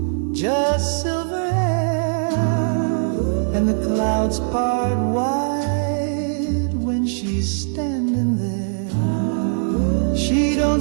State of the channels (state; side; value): silent; left; digital silence